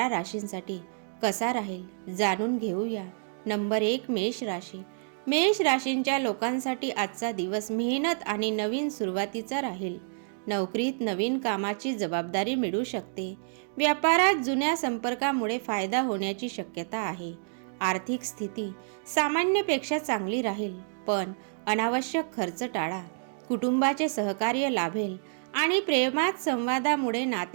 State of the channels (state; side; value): silent; left; digital silence